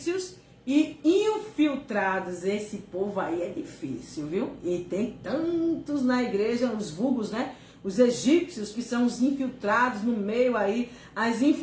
e infiltrados. Esse povo aí é difícil, viu? E tem tantos na igreja, os vulgos, né? Os egípcios, que são os infiltrados no meio aí, as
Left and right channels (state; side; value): identical; both; correlation 1.00